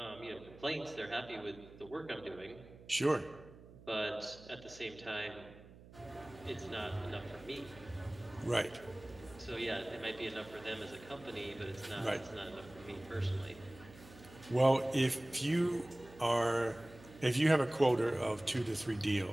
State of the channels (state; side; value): noise; right; hum, 20 dB below the sound